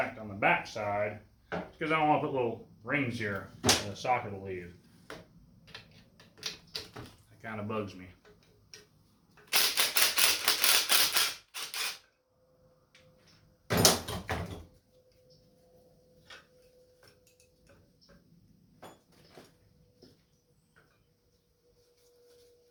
on the back side because I don't want to put little rings here in the socket will leave. That kind of bugs me.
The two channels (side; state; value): both; identical; correlation 1.00